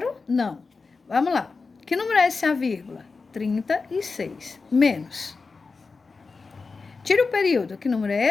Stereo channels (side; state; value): right; quieter; 4.3 dB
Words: Não. Vamos lá. Que número é esse a vírgula? 36. Menos. Tira o período. Que número